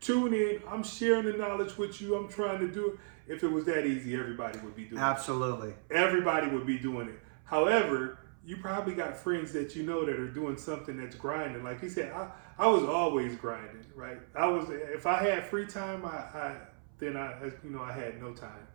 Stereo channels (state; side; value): silent; left; 55 dB below the other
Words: tune in, I'm sharing the knowledge with you, I'm trying to do it. If it was that easy, everybody would be doing it. Absolutely. Everybody would be doing it. However, you probably got friends that you know that are doing something that's grinding. Like you said, I was always grinding, right? If I had free time, I had no time.